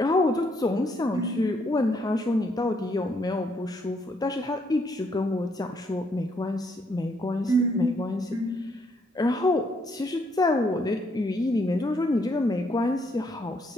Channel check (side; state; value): both; normal; correlation 0.72